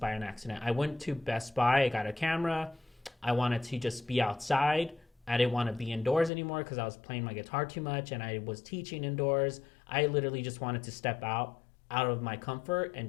an accident. I went to Best Buy, I got a camera. I wanted to just be outside. I didn't want to be indoors anymore because I was playing my guitar too much and I was teaching indoors. I literally just wanted to step out of my comfort and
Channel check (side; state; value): right; drops out; at 6.3 s